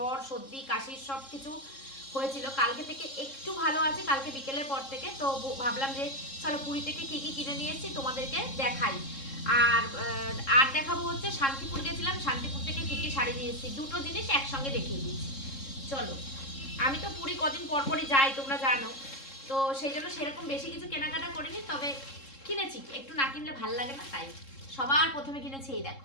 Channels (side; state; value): right; late; 3.7 ms